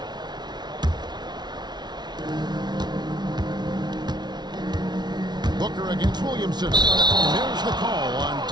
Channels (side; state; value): left; late; 0.20 ms